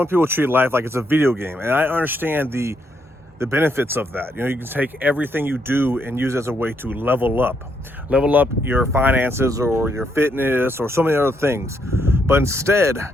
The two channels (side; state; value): both; normal; correlation 0.76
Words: people treat life like it's a video game, and I understand the benefits of that. You know, you can take everything you do and use it as a way to level up your finances or your fitness or so many other things. But instead,